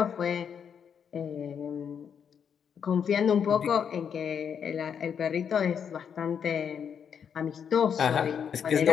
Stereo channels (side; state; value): right; quieter; 7.5 dB